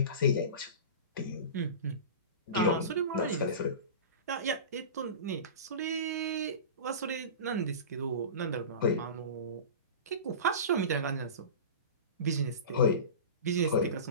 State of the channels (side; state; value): both; inverted; correlation -0.31